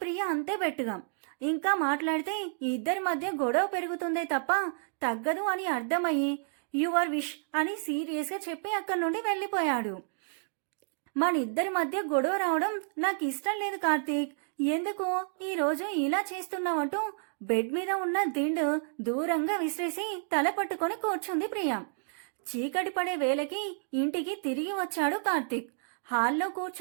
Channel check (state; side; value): silent; left; digital silence